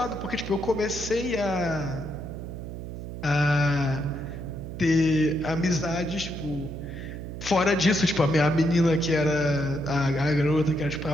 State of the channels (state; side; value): noise; right; hum, 9 dB below the sound